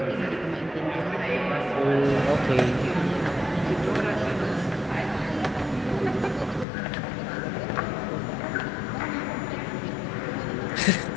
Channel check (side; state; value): right; drops out; at 6.7 s